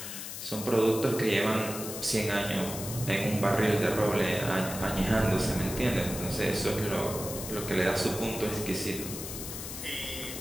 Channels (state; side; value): noise; left; hiss, 8 dB below the sound